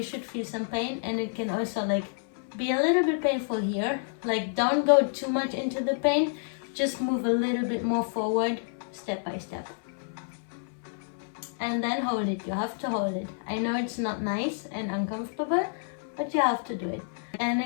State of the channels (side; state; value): right; silent; 58 dB below the other